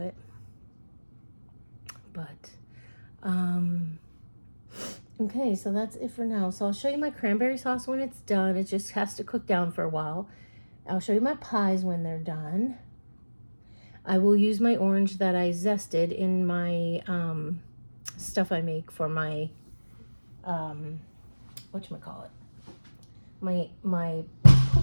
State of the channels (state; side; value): inverted; both; correlation -1.00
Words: But okay, so that's it for now. So I'll show you my cranberry sauce when it's done. It just has to cook down for a while. I'll show you my pies when they're done. I will use my orange that I zested in my stuff I make for my whatchamacallit, my